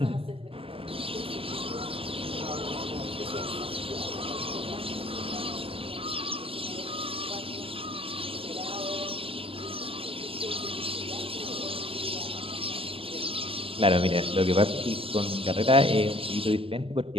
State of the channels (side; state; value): left; late; 0.27 ms